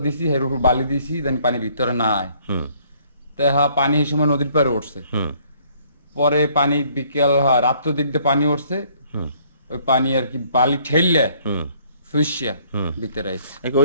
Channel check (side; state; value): both; inverted; correlation -0.62